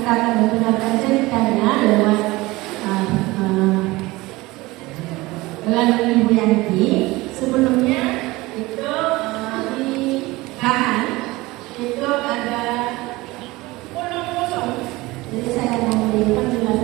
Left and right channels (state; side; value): quieter; left; 20.7 dB